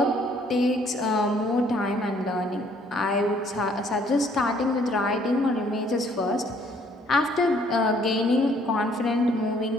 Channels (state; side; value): normal; both; correlation 0.63